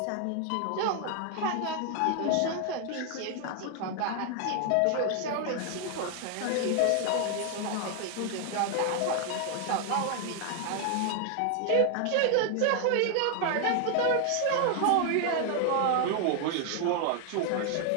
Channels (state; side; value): different; both; correlation 0.00